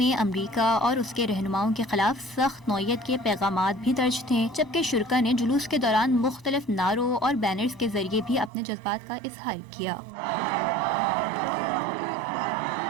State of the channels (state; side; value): drops out; left; at 8.5 s